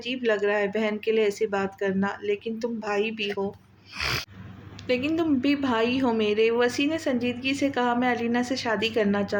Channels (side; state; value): both; identical; correlation 1.00